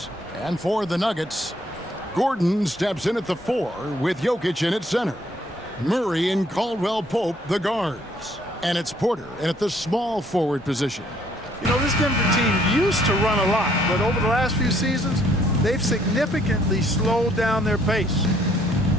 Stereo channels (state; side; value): normal; both; correlation 0.65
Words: And for the Nuggets, Gordon steps in at the 4 with Jokic in at center. Murray and Caldwell Pope, the guards. And it's Porter in at the small forward position. You know, this Denver team used to run a lot, but over the last few seasons, they've significantly slowed down their pace.